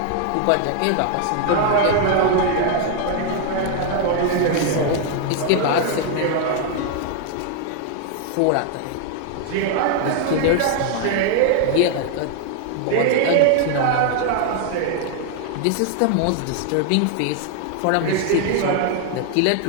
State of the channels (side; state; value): both; different; correlation 0.00